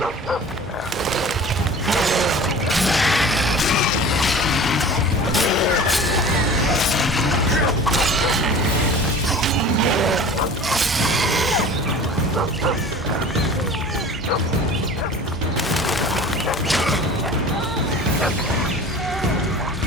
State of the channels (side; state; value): both; normal; correlation 0.40